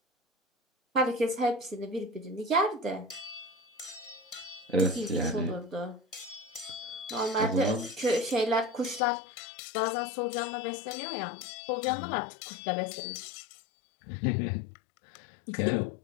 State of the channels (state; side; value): drops out; right; at 9.0 s